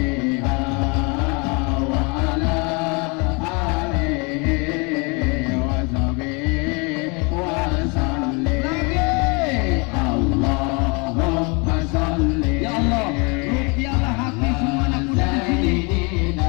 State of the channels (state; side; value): quieter; right; 30.9 dB